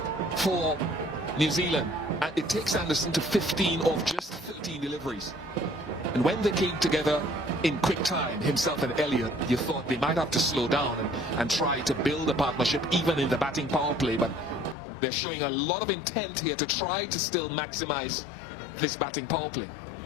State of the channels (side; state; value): right; drops out; at 14.8 s